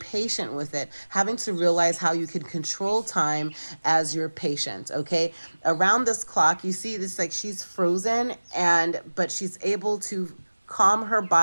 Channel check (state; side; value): inverted; both; correlation -1.00